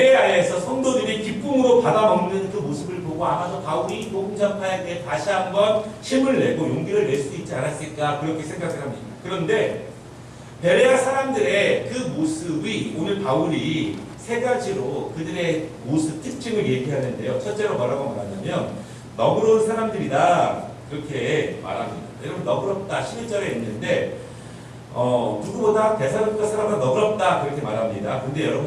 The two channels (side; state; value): both; identical; correlation 1.00